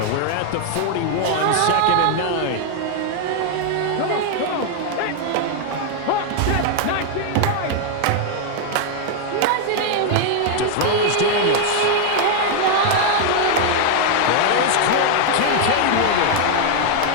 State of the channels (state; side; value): different; both; correlation 0.00